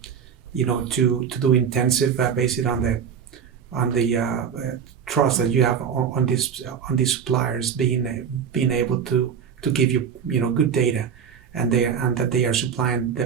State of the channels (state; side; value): quieter; left; 7.4 dB